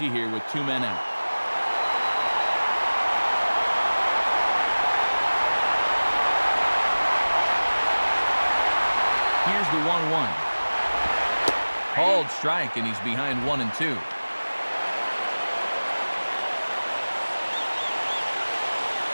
here with 2 men out. Here's the 1-1. Called strike, and he's behind 1-2.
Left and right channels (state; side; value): inverted; both; correlation -1.00